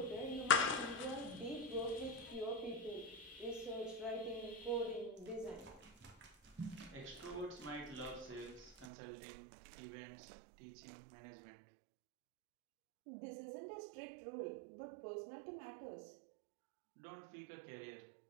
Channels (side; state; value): left; drops out; at 8.8 s